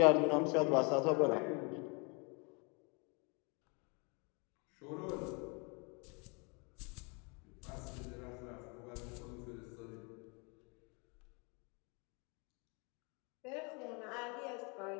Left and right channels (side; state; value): right; quieter; 32.4 dB